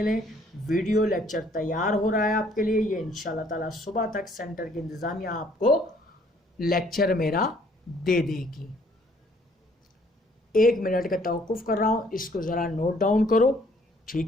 लें। वीडियो लेक्चर तैयार हो रहा है आपके लिए, ये इंशाल्लाह ताला सुबह तक सेंटर की इंतज़ामिया आपको लेक्चर मेरा दे देगी। 1 मिनट का तवक्कुफ़ कर रहा हूँ, इसको ज़रा नोट डाउन करो।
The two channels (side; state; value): both; normal; correlation 0.62